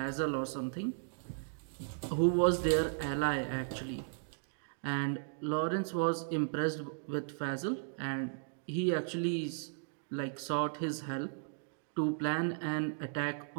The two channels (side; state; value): left; silent; digital silence